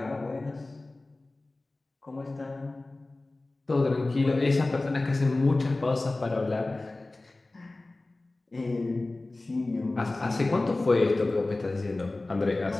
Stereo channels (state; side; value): quieter; right; 3.0 dB